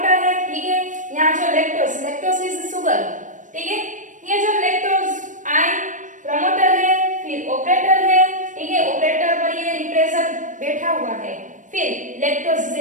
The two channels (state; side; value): late; left; 0.37 ms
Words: है, ठीक है, यहाँ जो लैक्टोज इज शुगर, ठीक है, ये जो लैक्टोज आई प्रमोटर है, फिर ऑपरेटर है, ठीक है, ऑपरेटर पर ये रिप्रेसर बैठा हुआ है, फिर lactose